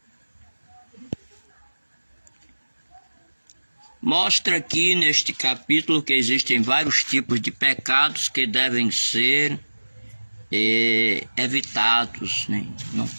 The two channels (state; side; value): inverted; both; correlation -1.00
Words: Mostra aqui neste capítulo que existem vários tipos de pecados que devem ser evitados, né? Não